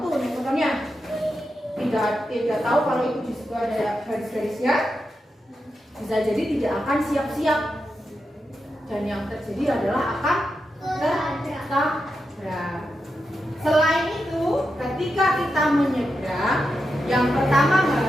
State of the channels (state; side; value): normal; both; correlation 0.88